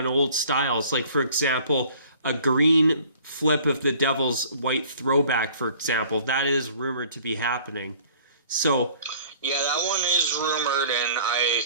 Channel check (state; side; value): inverted; both; correlation -0.52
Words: old styles. Like, for example, a green flip of the Devils' white throwback, for example. That is rumored to be happening. So, yeah, that one is rumored, and I